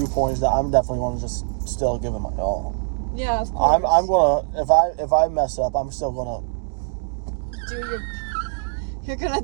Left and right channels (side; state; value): left; silent; digital silence